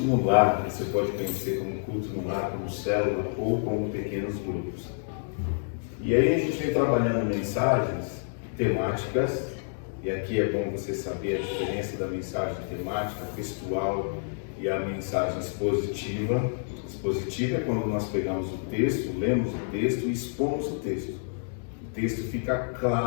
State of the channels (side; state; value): right; silent; digital silence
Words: no lar. Você pode conhecer como culto no lar, como célula ou como pequenos grupos. E aí a gente vem trabalhando mensagens temáticas, e aqui é bom você saber a diferença da mensagem temática, textual e a mensagem expositiva. Expositiva é quando nós pegamos o texto, lemos o texto e expomos o texto. O texto fica